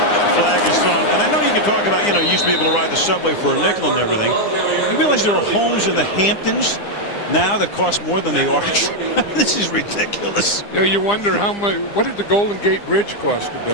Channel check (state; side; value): late; right; 9.9 ms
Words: flag is thrown. And I know you can talk about, you used to be able to ride the subway for a nickel and everything. You realize there are homes in the Hamptons now that cost more than the Arch? This is ridiculous. You wonder how much, what did the Golden Gate Bridge cost to